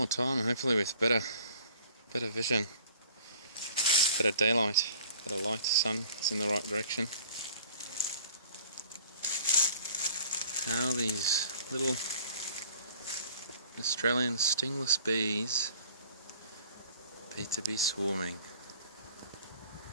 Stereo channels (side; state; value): both; inverted; correlation -0.52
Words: time, and hopefully with better vision, better daylight, better light, sun, it's in the right direction. How these little Australian stingless bees appear to be swarming.